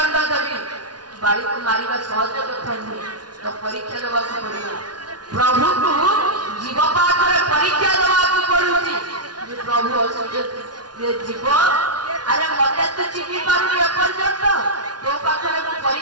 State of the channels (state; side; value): late; left; 0.69 ms